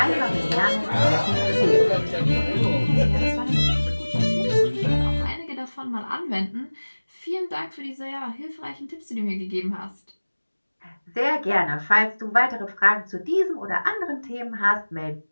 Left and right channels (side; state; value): both; inverted; correlation -1.00